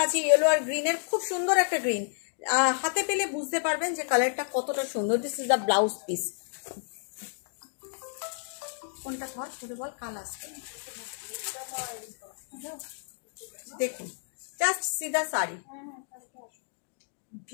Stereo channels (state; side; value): silent; right; digital silence